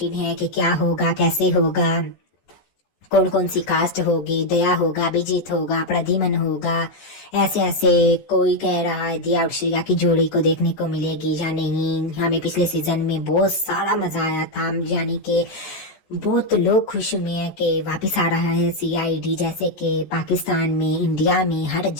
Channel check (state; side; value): late; right; 14 ms